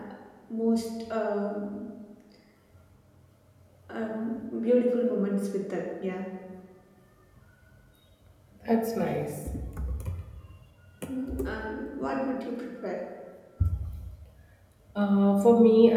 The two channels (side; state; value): both; identical; correlation 1.00